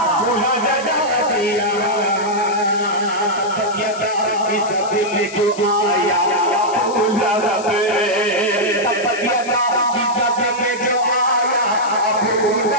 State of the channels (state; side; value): noise; left; hiss, 15 dB below the sound